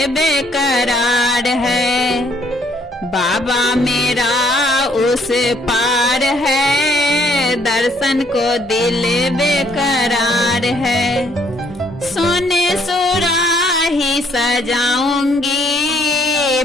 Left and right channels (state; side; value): normal; both; correlation 0.66